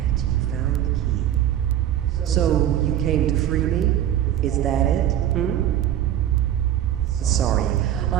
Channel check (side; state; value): left; quieter; 11.4 dB